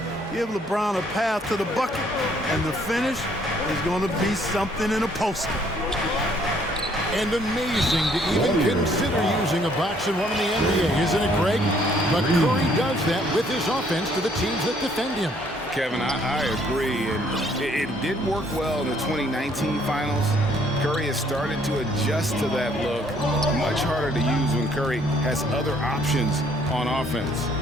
Give LeBron a path to the bucket, and the finish is going to be something in a poster. And amazing to even consider using a box and one in the NBA, isn't it, Greg? But Curry does that with his offense to the teams that defend him. Kevin, I agree, and it did work well in the 2019 finals. Curry has started to adjust to that look. Much harder to use when Curry has other options on offense.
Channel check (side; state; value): both; normal; correlation 0.64